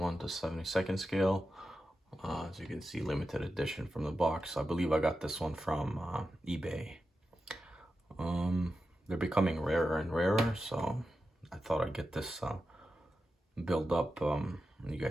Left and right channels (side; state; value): both; normal; correlation 0.90